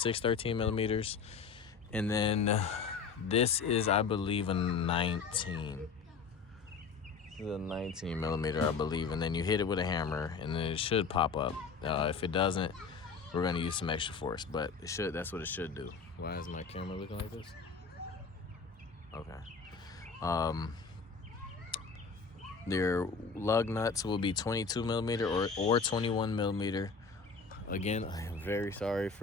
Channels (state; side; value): quieter; right; 5.2 dB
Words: 13 millimeters, and then this is, I believe, a 19. This is a 19 millimeter, I believe, and then you hit it with a hammer, and then it should pop up. If it doesn't, we're gonna use some extra force, but it should. That's what it should do. Why is my camera looking like this? Okay. Their lug nuts will be 22 millimeter or 21 millimeter. Again, I am very sorry